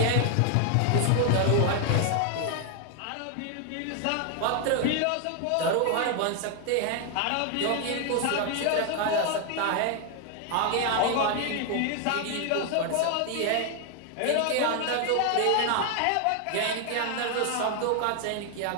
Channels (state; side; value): different; both; correlation 0.00